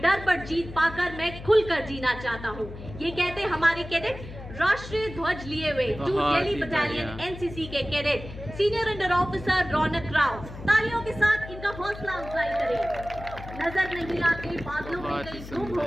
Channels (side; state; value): left; noise; hum, 13 dB below the sound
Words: डर पर जीत पाकर मैं खुलकर जीना चाहता हूँ। ये कहते हमारे कैडेट राष्ट्रीय ध्वज लिए हुए, जो बहुत दिल्ली ही बटालियन बढ़िया। एनसीसी के कैडेट सीनियर अंडर ऑफिसर रौनक राव। तालियों के साथ इनका हौसला अफजाई करें। नजर नहीं आते बादलों में बहुत ही कहीं तुम सुंदर।